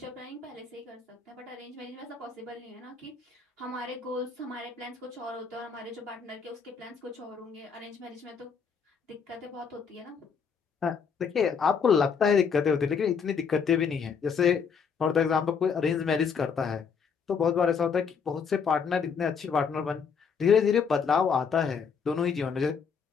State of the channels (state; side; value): quieter; right; 6.2 dB